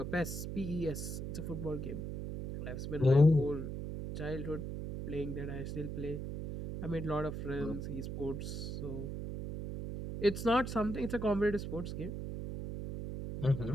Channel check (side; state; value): right; noise; hum, 5 dB below the sound